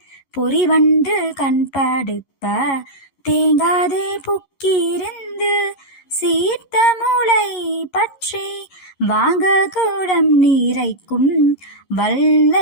பொறிவண்டு கண்படுப்ப தேங்காதே புக்கிருந்து சீர்த்த மூளை பற்றி வாங்க கூடம் நீரைக்கும்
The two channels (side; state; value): right; late; 11 ms